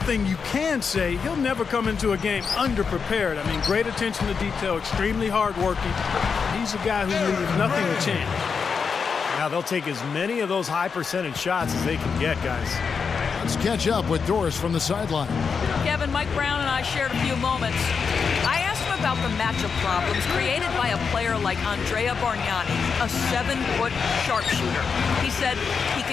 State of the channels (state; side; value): quieter; right; 5.8 dB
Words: you can say, he'll never come into a game underprepared. I mean, great attention to detail, extremely hardworking. He's a guy who leaves nothing to chance. Now they'll take as many of those high percentage shots as they can get, guys. Let's catch up with Doris from the sideline. Kevin, Mike Brown and I shared a few moments. I asked him about the matchup problems created by a player like Andrea Bargnani, a 7-foot sharpshooter. He said he